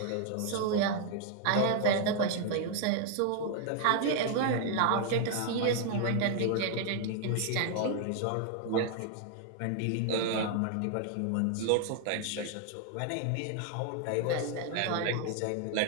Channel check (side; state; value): both; different; correlation 0.00